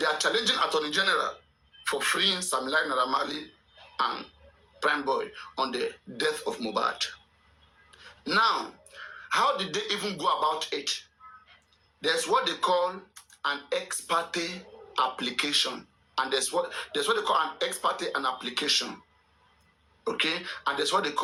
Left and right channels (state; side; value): identical; both; correlation 1.00